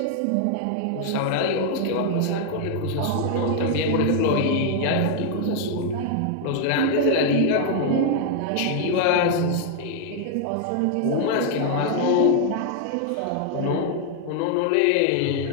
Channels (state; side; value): different; both; correlation 0.00